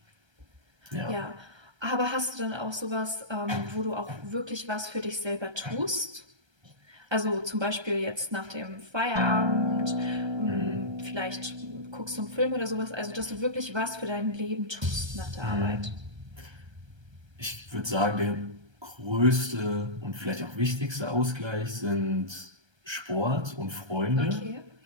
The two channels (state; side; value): late; left; 1.3 ms